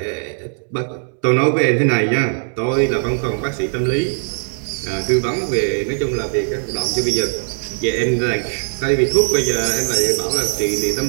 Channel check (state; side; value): silent; left; digital silence